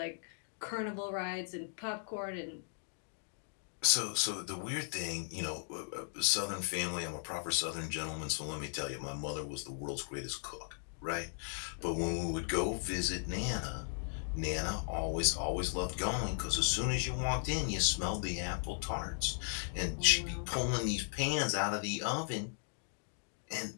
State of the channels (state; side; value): silent; right; digital silence